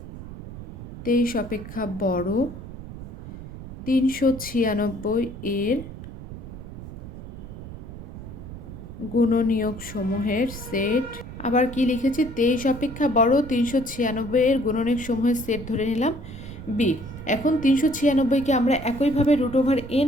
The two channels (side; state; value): right; noise; rumble, 12 dB below the sound